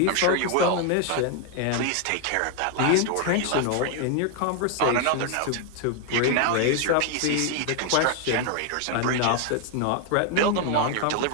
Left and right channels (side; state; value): both; different; correlation 0.00